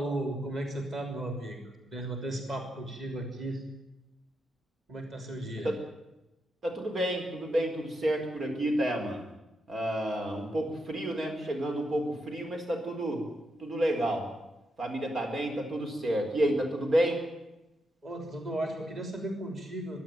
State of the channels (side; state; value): both; normal; correlation 0.83